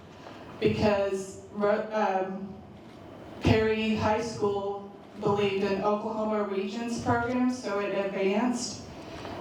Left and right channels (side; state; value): both; identical; correlation 1.00